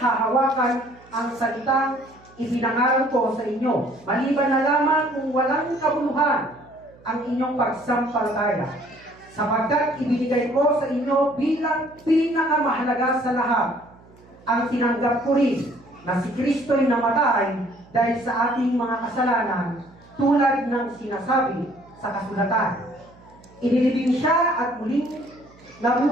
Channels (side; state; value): right; noise; hum, 26 dB below the sound